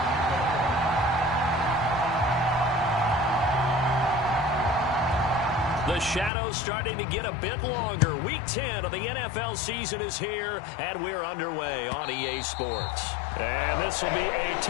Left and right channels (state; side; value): drops out; right; at 6.3 s